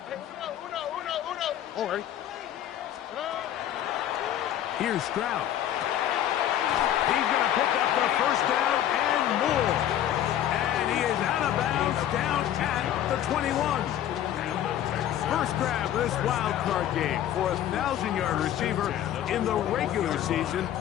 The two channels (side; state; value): right; quieter; 11.4 dB